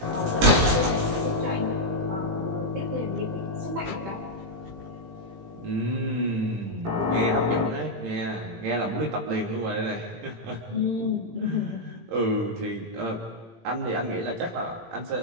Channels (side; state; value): left; late; 18 ms